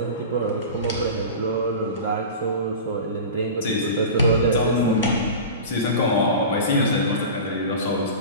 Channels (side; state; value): both; inverted; correlation -0.32